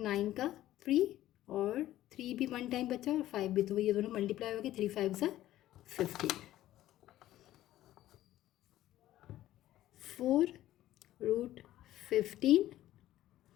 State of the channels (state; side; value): quieter; right; 14.1 dB